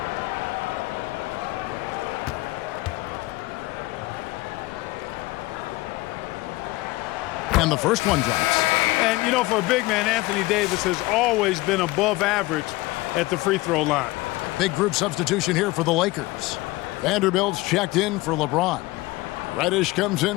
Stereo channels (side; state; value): right; quieter; 20.4 dB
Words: And the first one drops. And, you know, for a big man, Anthony Davis has always been above average at the free throw line. Big group substitution here for the Lakers. Vanderbilt's checked in for LeBron. Reddish comes